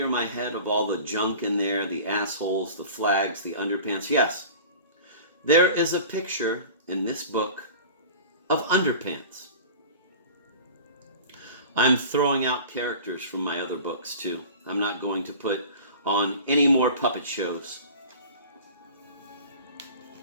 my head of all the junk in there, the assholes, the flags, the underpants. Yes, there is a picture in this book of underpants. I'm throwing out characters from my other books too. I'm not going to put on any more puppet shows.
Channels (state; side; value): inverted; both; correlation -0.39